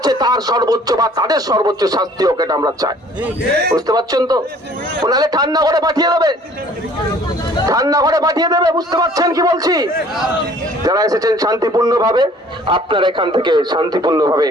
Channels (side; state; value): both; normal; correlation 0.54